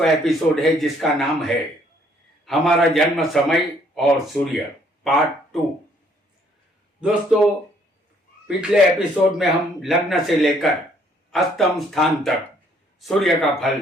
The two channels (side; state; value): both; normal; correlation 0.65